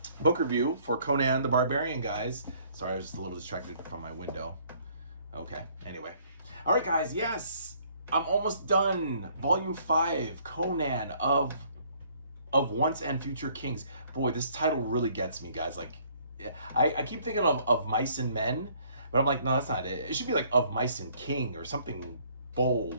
book review for Conan the Barbarian, guys. Sorry, I was just a little distracted from my window. Okay, anyway. All right, guys, yes, I'm almost done. Volume 5, Conan of Once and Future Kings. Boy, this title really gets me, guys. Like, I keep thinking of Mice and Men, but I'm like, no, that's not it. It should be like Of Mice and King or something bold,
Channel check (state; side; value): inverted; both; correlation -0.62